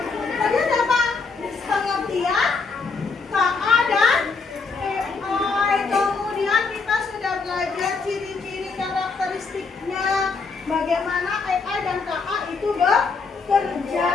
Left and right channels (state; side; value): quieter; right; 4.5 dB